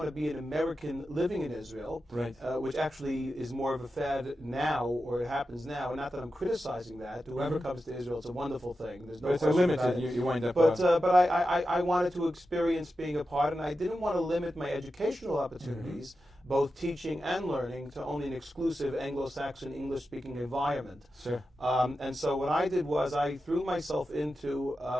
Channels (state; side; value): normal; both; correlation 0.91